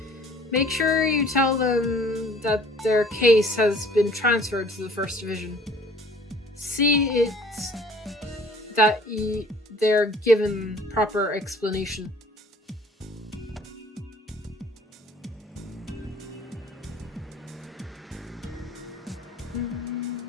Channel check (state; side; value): normal; both; correlation 0.53